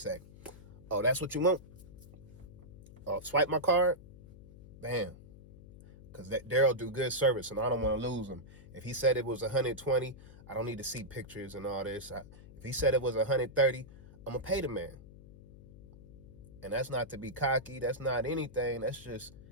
oh, that's what you want? Oh, swipe my card? Bam. Because Daryl do good service, and I don't want to lose him. If he said it was 120, I don't need to see pictures and all this. If he said it was 130, I'm going to pay the man. And that's not to be cocky. That's not anything. That's just,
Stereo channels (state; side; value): noise; left; hum, 18 dB below the sound